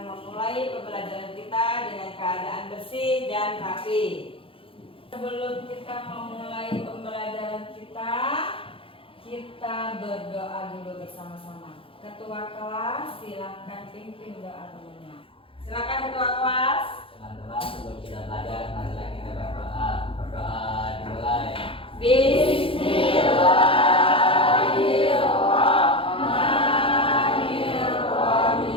memulai pembelajaran kita dengan keadaan bersih dan rapi. Sebelum kita memulai pembelajaran kita berdoa dulu bersama-sama. Ketua kelas, silakan pimpin doa temannya. Silakan ketua kelas. Teman-teman, sebelum kita belajar, marilah kita berdoa. Berdoa dimulai.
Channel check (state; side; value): late; right; 0.26 ms